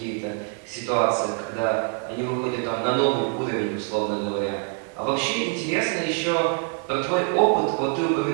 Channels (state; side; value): quieter; left; 39.8 dB